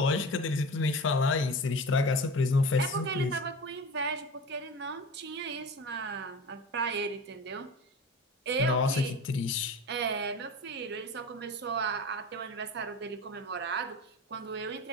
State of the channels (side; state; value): both; normal; correlation 0.34